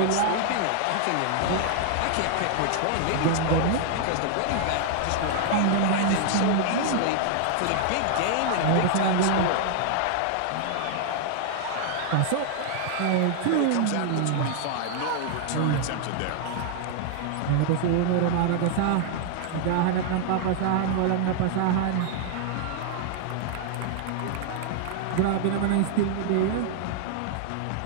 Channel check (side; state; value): both; different; correlation -0.01